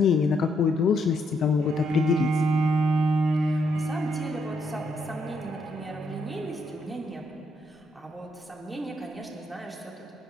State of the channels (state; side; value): normal; both; correlation 0.75